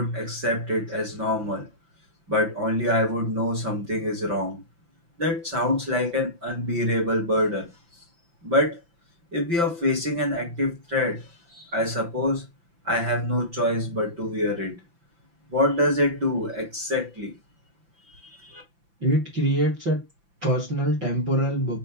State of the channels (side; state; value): left; late; 5.9 ms